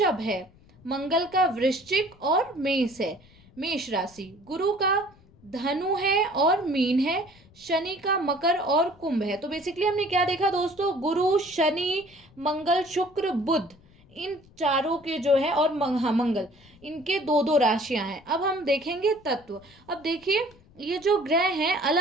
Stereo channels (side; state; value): left; noise; rumble, 27 dB below the sound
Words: है, मंगल का वृश्चिक और मेष है, मेष राशि, गुरु का धनु है और मीन है, शनि का मकर और कुंभ है। तो बेसिकली हमने क्या देखा दोस्तों, गुरु, शनि, मंगल, शुक्र, बुध, इन चारों के जो है, और मंगल, इनके 2 राशियां हैं। अब हम देखेंगे तत्व। अब देखिए ये जो ग्रह हैं